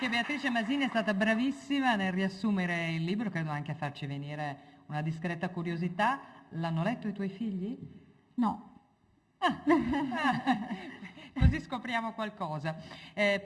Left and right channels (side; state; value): both; identical; correlation 1.00